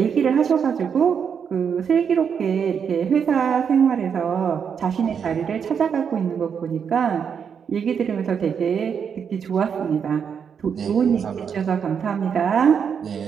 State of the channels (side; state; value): left; quieter; 7.1 dB